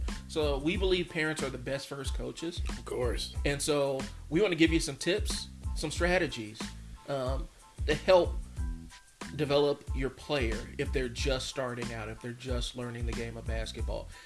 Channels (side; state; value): both; identical; correlation 1.00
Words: So we believe parents are the best first coaches. Of course. And so we want to give you some tips, some strategies to help develop your player if they're just starting out, if they're just learning the game of basketball.